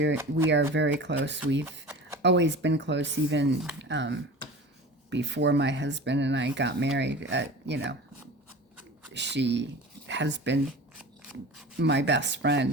are very close. We've always been close, even before my husband and I got married. You know, she has been my best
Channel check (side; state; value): both; normal; correlation 0.36